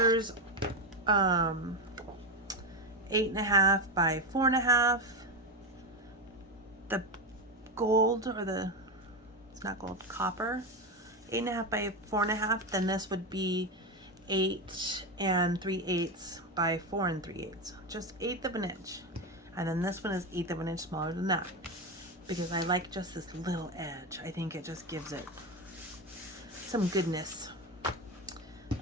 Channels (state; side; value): normal; both; correlation 0.14